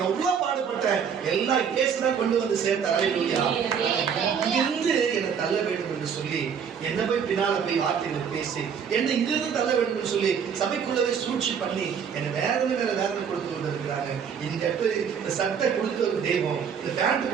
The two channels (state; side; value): quieter; left; 7.2 dB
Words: எவ்வளவு பாடுபட்டேன். எல்லாம் இயேசுதான் கொண்டு வந்து சேர்த்தார். இங்கிருந்து என்னை தள்ள வேண்டும் என்று சொல்லி, என்ன போய் பின்னால போய் வார்த்தைகளை பேசி என்னை இங்கிருந்து தள்ள வேண்டும் என்று சொல்லி சபைக்குள்ளவே சூழ்ச்சி பண்ணி என்னை வேதனை மேல வேதனை கொடுத்து கொண்டிருக்கிறாங்க. இந்த இடத்துல இந்த சட்டை கொடுத்த ஒரு தெய்வம், இந்த பேண்ட்